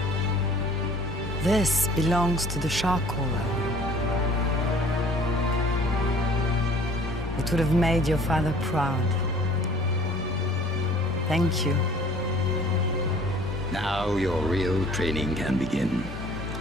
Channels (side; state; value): both; normal; correlation 0.52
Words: This belongs to the shark caller. It would have made your father proud. Thank you. Now your real training can begin.